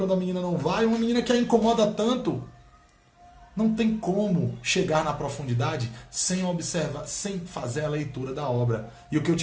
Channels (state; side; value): identical; both; correlation 1.00